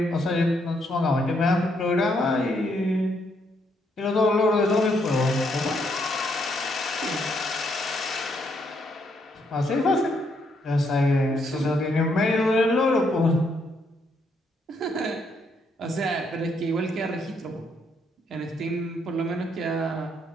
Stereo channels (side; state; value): both; normal; correlation 0.74